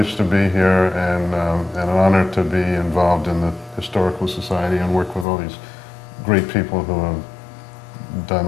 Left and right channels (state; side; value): drops out; right; at 5.2 s